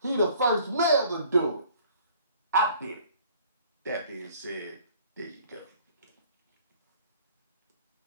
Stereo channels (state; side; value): inverted; both; correlation -0.55